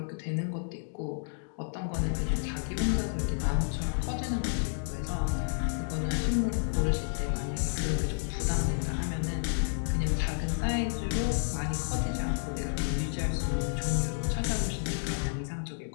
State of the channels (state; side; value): silent; right; digital silence